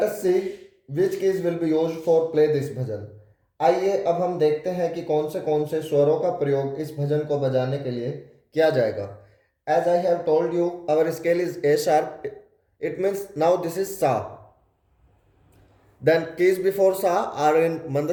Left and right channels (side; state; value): both; identical; correlation 1.00